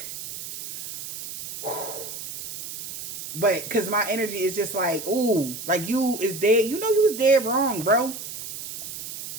but because my energy is just like, ooh, like you is dead. You know you was dead wrong, bro.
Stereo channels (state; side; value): noise; right; hiss, 9 dB below the sound